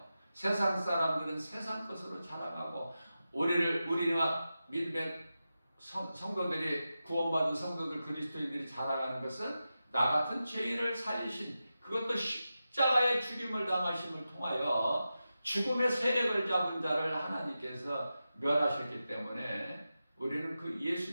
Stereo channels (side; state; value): both; inverted; correlation -0.92